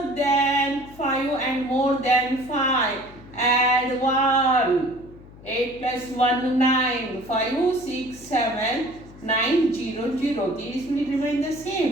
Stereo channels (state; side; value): noise; left; hum, 20 dB below the sound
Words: than 5 and more than 5. Add 1. 8 plus 1, 9. 5, 6, 7, 9, 0, 0. These will remain the